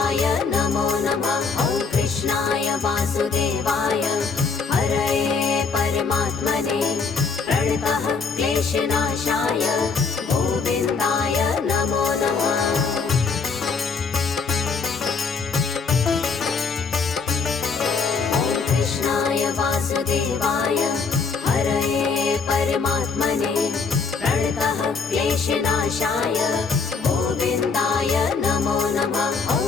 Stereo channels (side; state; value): right; quieter; 5.0 dB